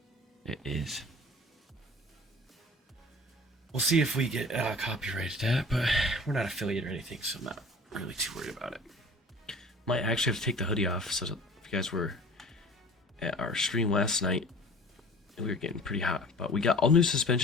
It is. We'll see if we get copyrighted that, but we're not affiliate or anything, so I'm not really too worried about it. Might actually have to take the hoodie off, so if you guys were at our stream last night, we were getting pretty hot, but we got all new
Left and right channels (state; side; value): normal; both; correlation 0.44